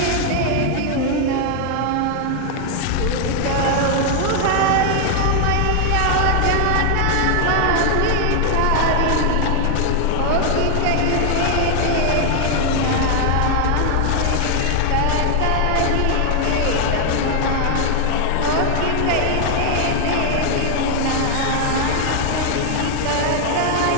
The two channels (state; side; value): different; both; correlation 0.00